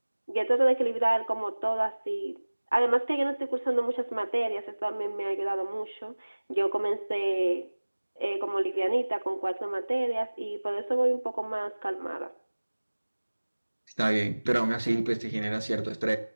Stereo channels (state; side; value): inverted; both; correlation -1.00